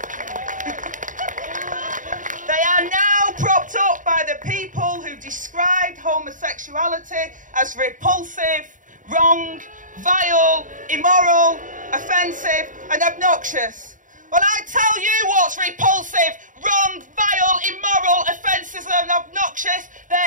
They are now propped up by the people who described homosexuality as repulsive, wrong, vile, immoral, offensive and obnoxious. Well, I tell you what's repulsive, wrong, vile, immoral, offensive and obnoxious.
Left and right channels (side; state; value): left; late; 0.38 ms